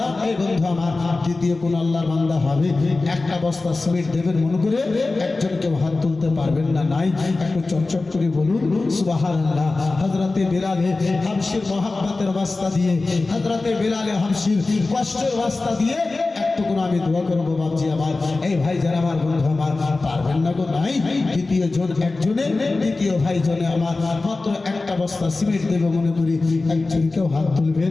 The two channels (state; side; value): quieter; right; 3.4 dB